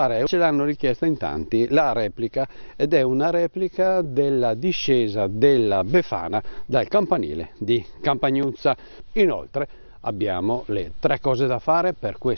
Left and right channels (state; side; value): inverted; both; correlation -1.00